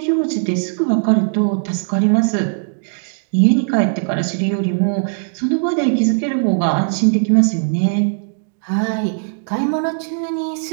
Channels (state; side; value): silent; left; digital silence